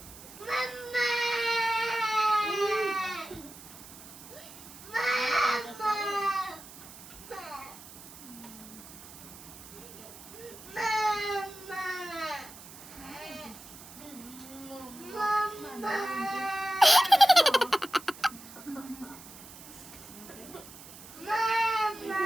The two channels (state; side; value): noise; right; hiss, 17 dB below the sound